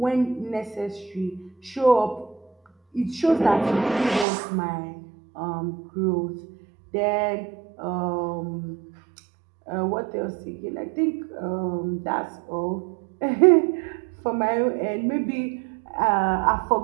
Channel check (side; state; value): left; drops out; at 4.2 s